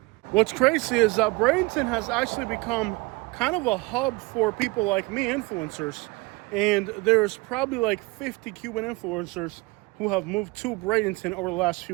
What's crazy is that Bradenton has actually become kind of a hub for people like me, influencers. And there's probably like 50 Cuban influencers who have moved to Bradenton over the last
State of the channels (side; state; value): left; quieter; 24.3 dB